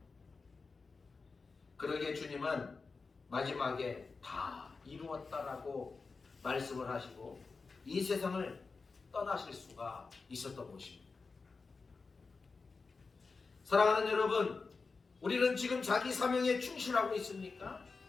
그러기에 주님은 마지막에 다 이루었다라고 말씀을 하시고 이 세상을 떠나실 수가 있었던 것입니다. 사랑하는 여러분, 우리는 지금 자기 사명에 충실하고 있습니까?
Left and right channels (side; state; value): right; quieter; 4.4 dB